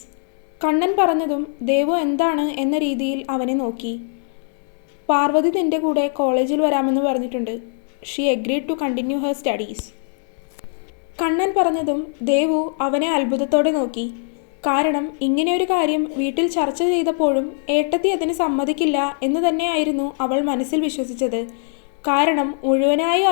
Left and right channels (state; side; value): silent; right; digital silence